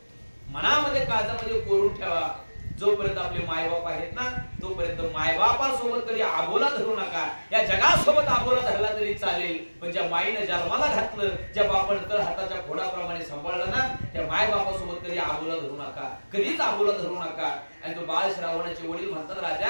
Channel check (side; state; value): both; inverted; correlation -1.00